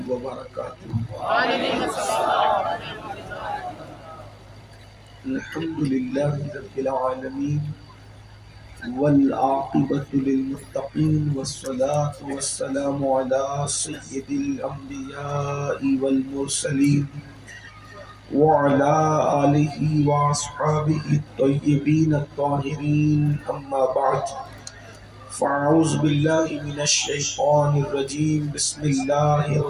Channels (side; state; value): both; identical; correlation 1.00